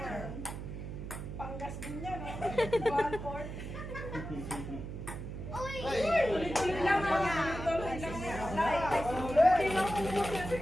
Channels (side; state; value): right; noise; hum, 8 dB below the sound